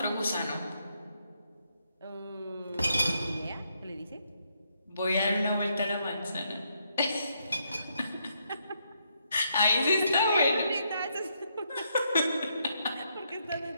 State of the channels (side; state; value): both; inverted; correlation -0.77